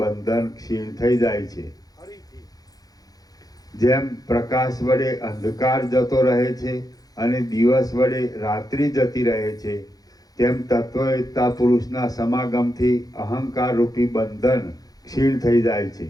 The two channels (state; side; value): late; right; 0.18 ms